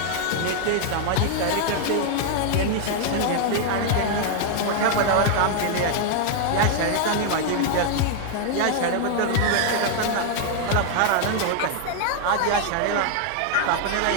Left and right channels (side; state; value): both; different; correlation 0.00